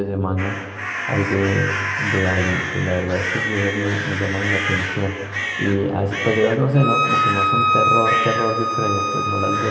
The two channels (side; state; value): both; identical; correlation 1.00